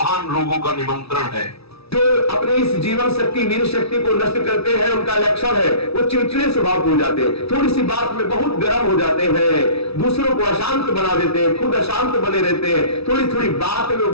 रोगों का निमंत्रण है। जो अपनी इस जीवन शक्ति, वीर शक्ति को नष्ट करते हैं उनका लक्षण है वो चिड़चिड़े स्वभाव हो जाते हैं, थोड़ी सी बात में बहुत गर्म हो जाते हैं, दूसरों को अशांत बना देते हैं, खुद अशांत बने रहते हैं, थोड़ी थोड़ी बात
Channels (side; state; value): right; late; 0.77 ms